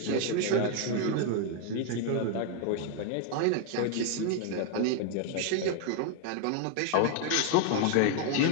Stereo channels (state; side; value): different; both; correlation 0.01